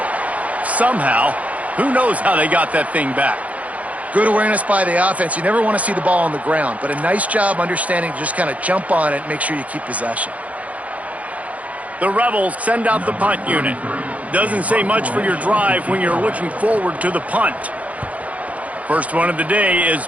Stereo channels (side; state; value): left; late; 0.069 ms